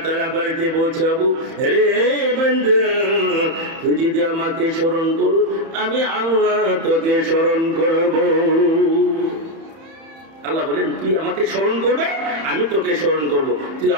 তাআলা বাড়িতে পৌঁছাবো। রে বান্দা, তুই যদি আমাকে স্মরণ করো, আমি আল্লাহ তোকে স্মরণ করব। আল্লাহ বলেন, তুই আমাকে স্মরণ করবে, আমি তোকে স্মরণ করব। তুই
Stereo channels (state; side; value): late; left; 31 ms